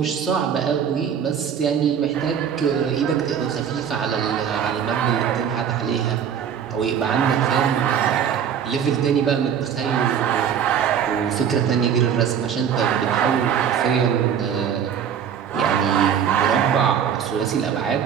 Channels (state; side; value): quieter; left; 8.2 dB